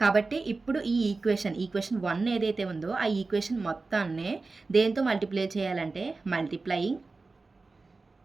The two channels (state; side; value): quieter; left; 3.8 dB